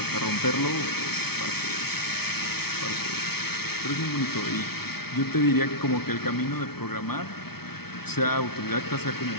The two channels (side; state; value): right; late; 0.96 ms